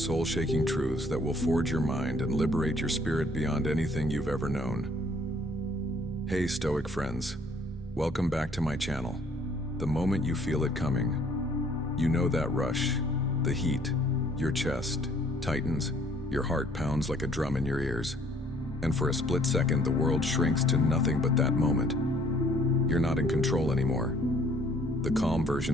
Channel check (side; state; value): both; normal; correlation 0.61